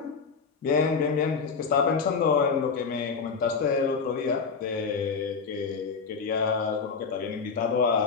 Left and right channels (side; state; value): right; quieter; 5.3 dB